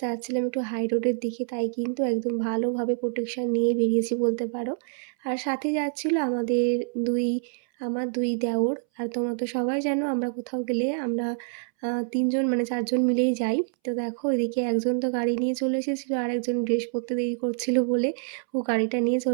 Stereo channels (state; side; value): silent; left; 61 dB below the other